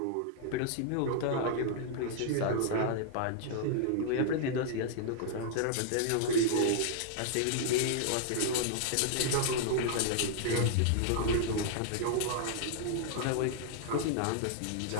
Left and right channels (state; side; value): different; both; correlation -0.01